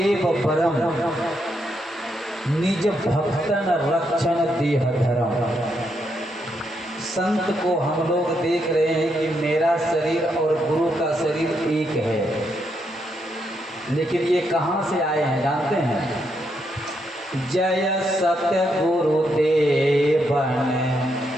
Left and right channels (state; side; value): normal; both; correlation 0.79